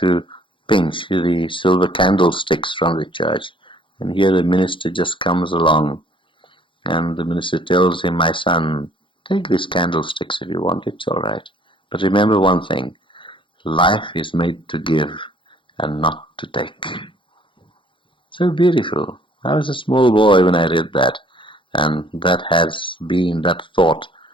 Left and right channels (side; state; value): right; late; 0.25 ms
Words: pinch the silver candlesticks from the church, and here the minister just comes along, and the minister tells him, "My son, take these candlesticks if you want, it's all right, but remember one thing, life is made to give and not to take." So beautiful. I was a small boy when I read that, and that thought